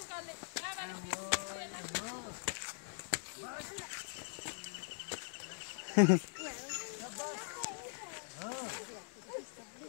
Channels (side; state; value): right; silent; digital silence